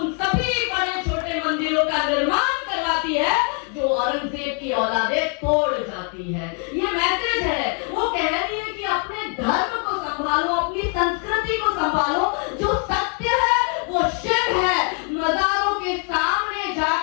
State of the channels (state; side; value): quieter; right; 36.5 dB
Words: उन सभी बड़े छोटे मंदिरों का निर्माण करवाती है जो औरंगजेब की औलादें तोड़ जाती है। ये मैसेज है। वो कह रही है कि अपने धर्म को संभालो, अपनी संस्कृति को संभालो, जो सत्य है वो शिव है। मजारों के सामने